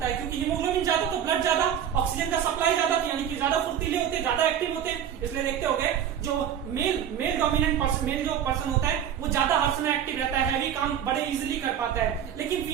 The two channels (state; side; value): quieter; left; 9.3 dB